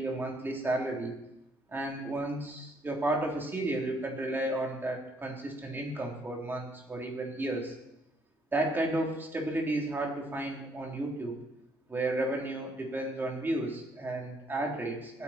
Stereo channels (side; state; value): both; normal; correlation 0.68